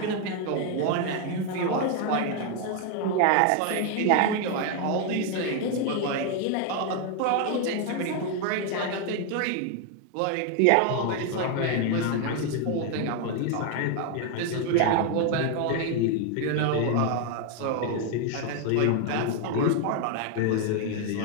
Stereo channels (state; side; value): different; both; correlation 0.01